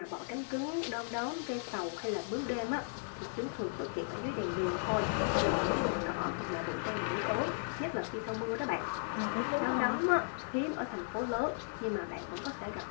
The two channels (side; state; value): right; silent; 54 dB below the other